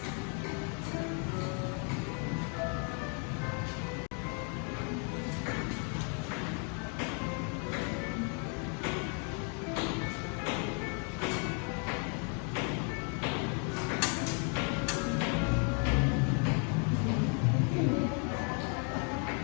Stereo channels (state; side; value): quieter; right; 39.6 dB